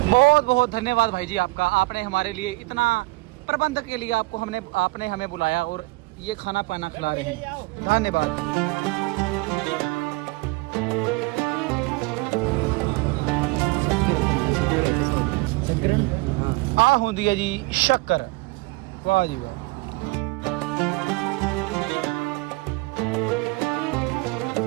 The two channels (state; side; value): quieter; left; 23.9 dB